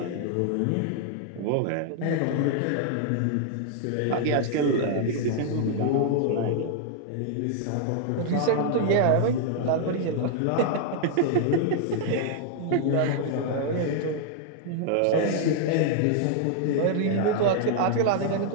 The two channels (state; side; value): different; both; correlation 0.00